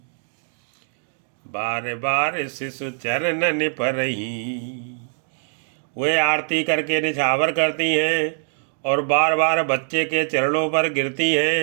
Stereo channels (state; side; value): silent; left; digital silence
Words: बार बार शिशु चरणन परही। वे आरती करके निछावर करती हैं और बार बार बच्चे के चरणों पर गिरती